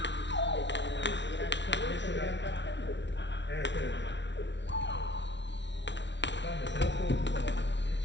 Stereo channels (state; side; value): late; right; 0.51 ms